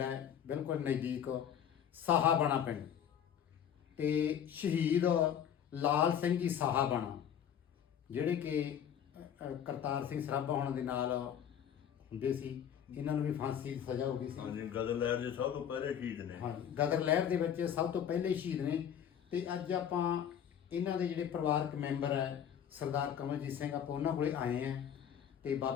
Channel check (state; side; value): quieter; right; 9.1 dB